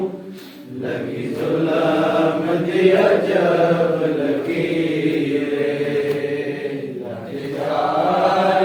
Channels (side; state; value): both; identical; correlation 1.00